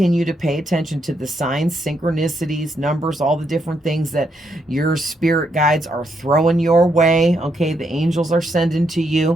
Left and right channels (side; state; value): both; normal; correlation 0.78